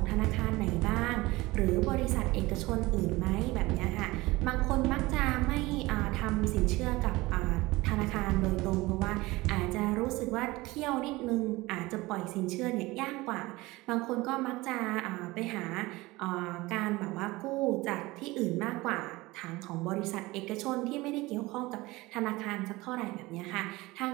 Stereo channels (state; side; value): quieter; left; 20.8 dB